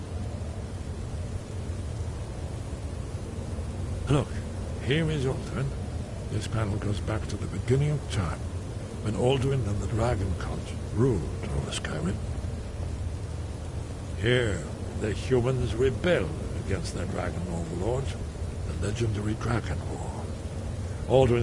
Look, here is Alduin. This panel goes back to the beginning of time, when Alduin and the Dragon Cult ruled over Skyrim. Here, the humans rebelled against their dragon overlords, the legendary Dragon War.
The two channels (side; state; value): both; identical; correlation 1.00